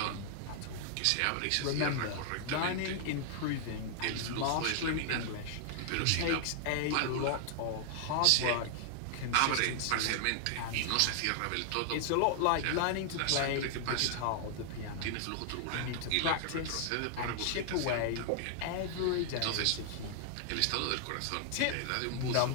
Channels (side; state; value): both; different; correlation 0.00